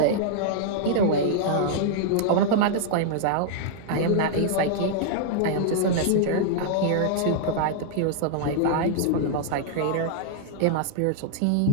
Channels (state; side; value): different; both; correlation -0.01